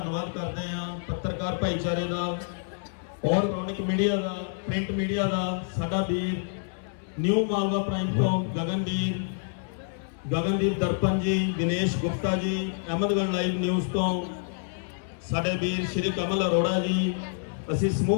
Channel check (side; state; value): right; silent; 60 dB below the other